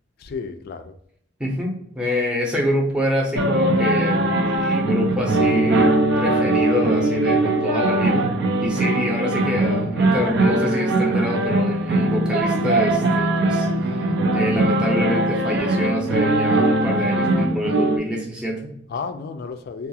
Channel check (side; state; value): both; normal; correlation 0.48